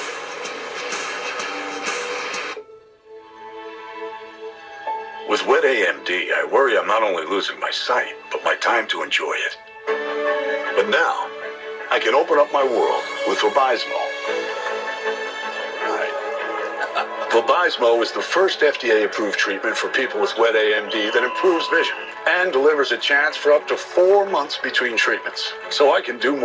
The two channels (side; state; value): both; identical; correlation 1.00